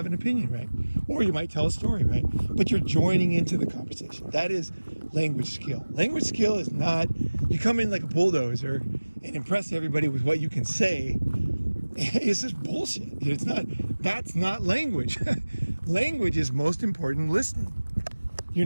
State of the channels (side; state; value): both; inverted; correlation -1.00